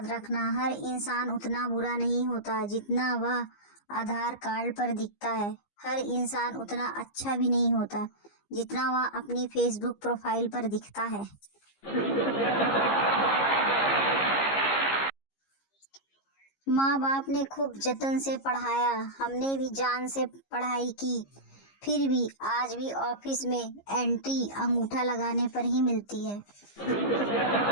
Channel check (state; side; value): late; right; 15 ms